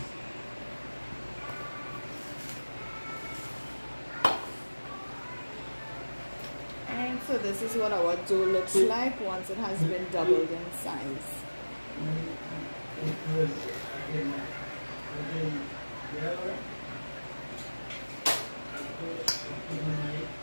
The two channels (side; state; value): both; inverted; correlation -1.00